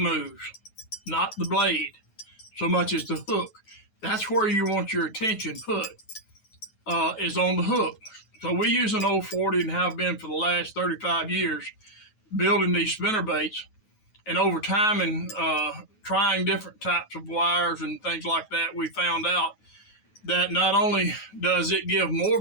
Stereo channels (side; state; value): right; late; 9.3 ms